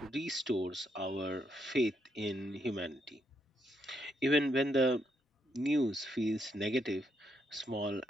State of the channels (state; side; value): normal; both; correlation 0.77